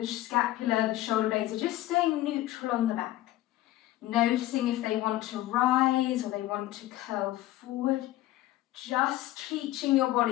scapula, the shoulder blades are just staying neutral on the back. Noticing if they want to rise or they want to curl forward. Just teaching your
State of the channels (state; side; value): quieter; right; 15.5 dB